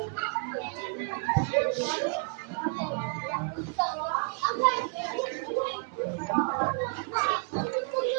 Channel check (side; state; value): left; quieter; 37.6 dB